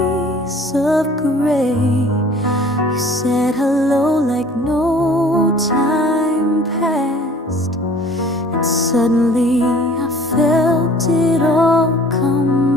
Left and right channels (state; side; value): normal; both; correlation 0.51